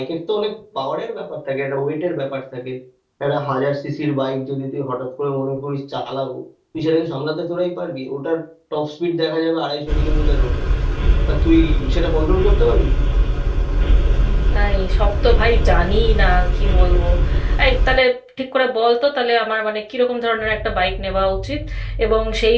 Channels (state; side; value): identical; both; correlation 1.00